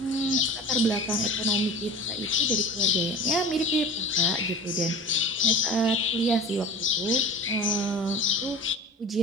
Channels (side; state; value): both; normal; correlation 0.36